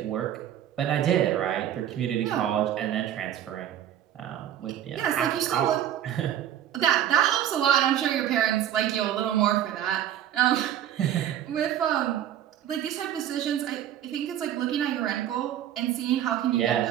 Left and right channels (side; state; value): left; quieter; 11.0 dB